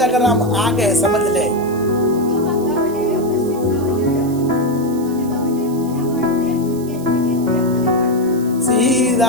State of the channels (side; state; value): right; noise; hiss, 19 dB below the sound